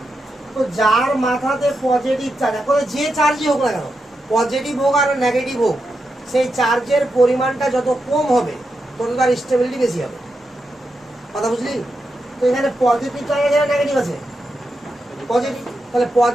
তো যার মাথাতে পজিটিভ চার্জ, এখন যে চার্জই হোক না কেন, পজিটিভ হোক আর নেগেটিভ হোক, সেই চার্জের পরিমাণটা যত কম হবে তত তার স্টেবিলিটি বেশি হবে, কথা বুঝলি? তো এখানে পজিটিভ চার্জ আছে, নেগেটিভ আছে, পজিটিভ। তাহলে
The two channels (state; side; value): normal; both; correlation 0.86